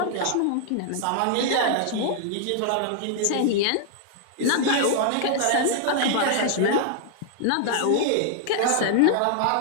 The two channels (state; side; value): different; both; correlation -0.01